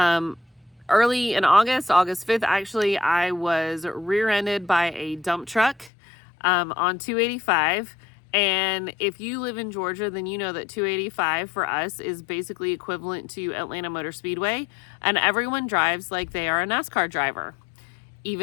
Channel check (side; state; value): right; drops out; at 5.9 s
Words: in August 5th, actually, I was rear-ended by a dump truck on 285. And if you live in Georgia, then you know that 285 for us is basically equivalent to Atlanta Motor Speedway. And everyone drives like they are a NASCAR driver,